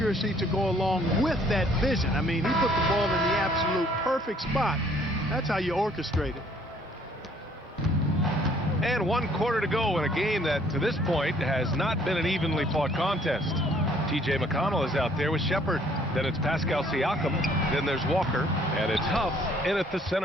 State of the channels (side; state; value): both; normal; correlation 0.61